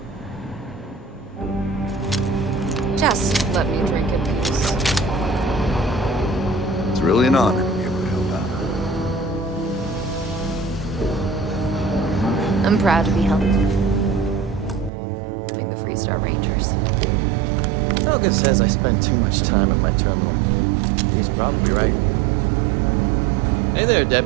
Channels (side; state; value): left; drops out; at 14.9 s